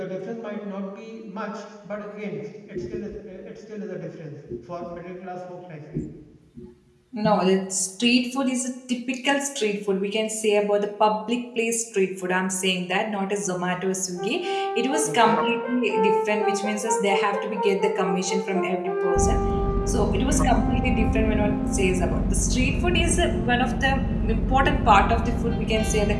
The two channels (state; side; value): identical; both; correlation 1.00